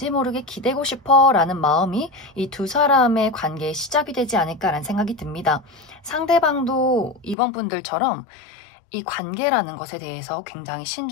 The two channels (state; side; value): drops out; right; at 7.4 s